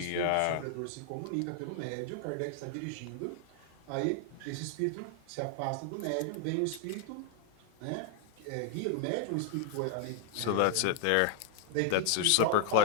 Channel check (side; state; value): both; different; correlation 0.00